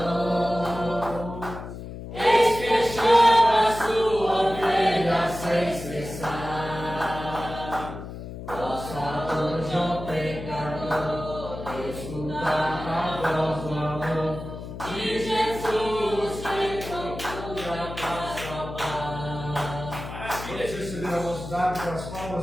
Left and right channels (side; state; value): left; noise; hum, 10 dB below the sound